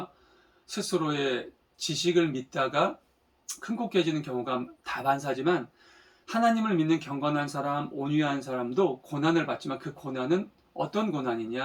스스로의 지식을 믿다가 큰 곳 깨지는 경우가 다반사지만 하나님을 믿는 경건한 사람, 온유한 사람도 고난을 받지만 그 고난은 어떤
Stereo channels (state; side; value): identical; both; correlation 1.00